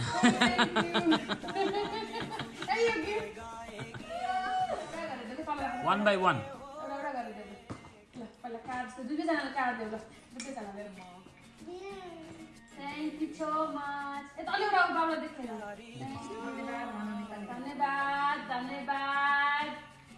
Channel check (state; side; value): identical; both; correlation 1.00